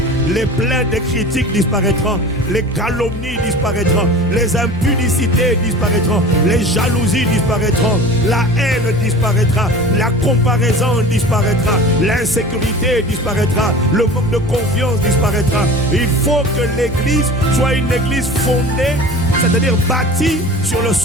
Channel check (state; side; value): normal; both; correlation 0.38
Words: les plaintes et critiques disparaîtront, les calomnies disparaîtront, les impudicités disparaîtront, les jalousies disparaîtront, la haine disparaîtra, la comparaison disparaîtra, l'insécurité disparaîtra, le manque de confiance disparaîtra. Il faut que l'église soit une église fondée, c'est-à-dire bâtie sur le